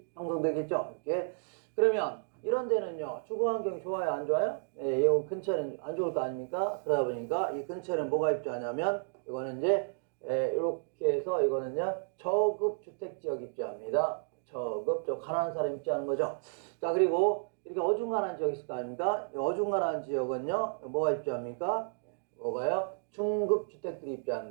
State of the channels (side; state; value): left; silent; digital silence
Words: 형성되겠죠. 이렇게. 그러면 이런 데는요, 주거 환경이 좋아요, 안 좋아요? 네, 이 근처는 안 좋을 거 아닙니까? 그러다 보니까 이 근처는 뭐가 입주하냐면, 이거는 이제, 이렇게 해서 이거는요, 저급 주택지역 입주합니다. 저 가난한 사람 입주하는 거죠. 자, 그리고 이렇게 어중간한 지역이 있을 거 아닙니까? 이 어중간한 지역은요, 뭐가 입주합니까? 뭐가요? 중급 주택들이